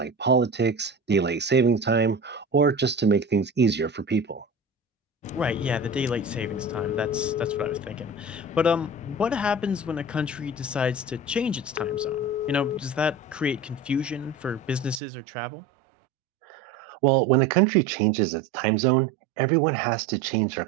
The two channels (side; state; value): left; drops out; at 15.0 s